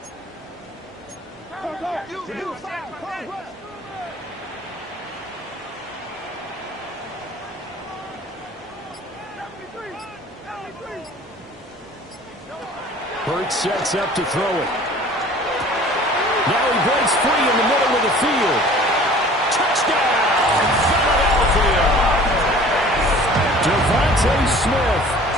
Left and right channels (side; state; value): both; normal; correlation 0.47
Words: Hurts sets up to throw it. Now he breaks free in the middle of the field. Touchdown, Philadelphia. Devontae Smith,